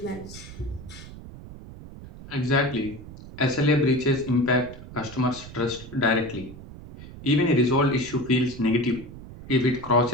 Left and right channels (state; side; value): noise; right; rumble, 15 dB below the sound